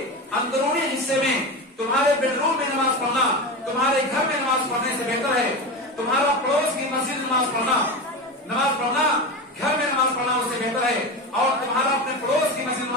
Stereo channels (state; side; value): normal; both; correlation 0.22